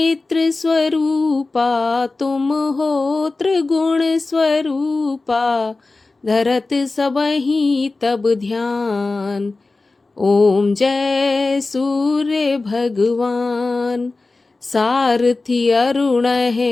स्वरूपा तुम हो त्रिगुण स्वरूपा, धरत सबहि तब ध्यान। ओम जय सूर्य भगवान। सारथी अरुण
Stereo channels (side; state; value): right; quieter; 3.5 dB